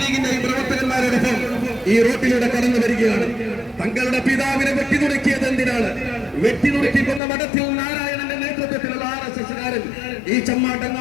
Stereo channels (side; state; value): right; drops out; at 7.2 s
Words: ലീഗിന്റെയും പ്രവർത്തകന്മാരോടൊപ്പം ഈ റോട്ടിലൂടെ കടന്നു വരികയാണ്. തങ്ങളുടെ പിതാവിനെ വെട്ടിനുറുക്കിയത് എന്തിനാണ്? വെട്ടിനുറുക്കിക്കൊന്ന മഠത്തിൽ നാരായണന്റെ നേതൃത്വത്തിലുള്ള RSSകാരൻ ഈ